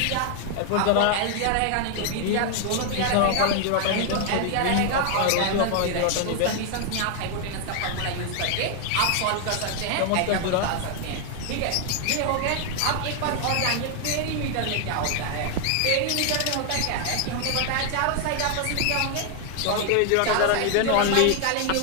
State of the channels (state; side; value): different; both; correlation 0.00